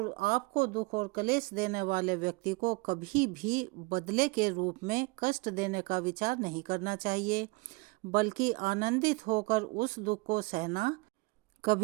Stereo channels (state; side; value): quieter; left; 25.3 dB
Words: आपको दुख और क्लेश देने वाले व्यक्ति को कभी भी बदले के रूप में कष्ट देने का विचार नहीं करना चाहिए, बल्कि आनंदित होकर उस दुख को सहना।